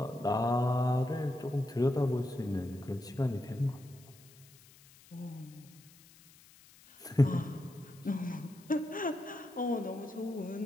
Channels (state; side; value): noise; left; hiss, 24 dB below the sound